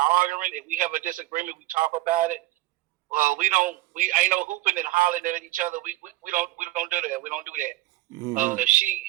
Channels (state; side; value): quieter; left; 18.3 dB